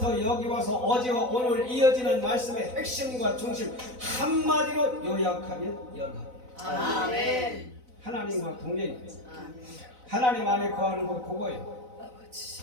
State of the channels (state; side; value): late; left; 4.0 ms